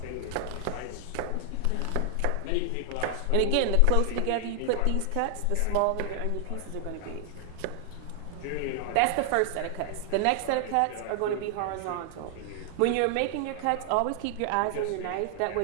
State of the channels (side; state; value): both; different; correlation 0.00